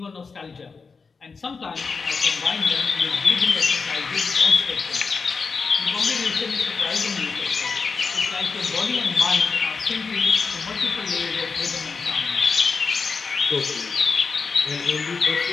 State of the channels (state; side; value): quieter; right; 4.9 dB